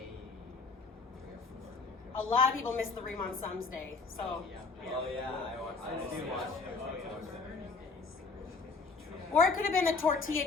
3 or 4. A lot of people miss the Riemann sums day, so. Oh yeah, I do watch it. Oh, yeah. Or it could have been the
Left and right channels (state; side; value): quieter; right; 4.3 dB